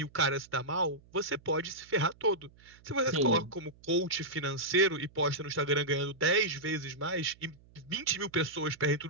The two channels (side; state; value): right; noise; hum, 27 dB below the sound